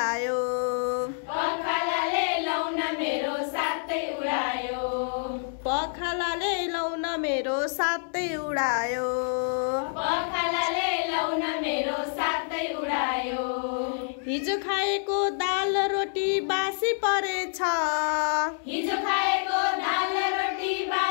पखालाले लौन मेरो साथै उडायो पखालाले लौन मेरो साथै उडायो पखालाले लौन मेरो साथै उडायो हिजो खाएको दाल रोटी बासी परेछ हिजो खाएको दाल रोटी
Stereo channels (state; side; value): silent; right; 60 dB below the other